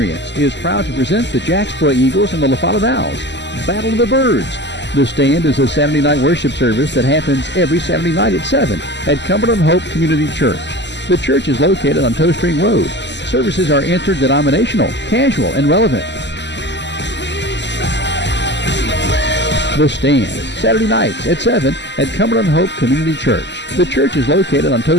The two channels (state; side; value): late; right; 0.51 ms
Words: is proud to present the Jacksboro Eagles and the La Follette Owls. Battle of the Birds. The Stand is a Saturday night worship service that happens every Saturday night at 7 at Cumberland Hope Community Church. The church is located on Toe String Road. Services are interdenominational, casual, and relevant. The Stand, Saturday nights at 7 at Cumberland Hope Community Church. The church is located on Toe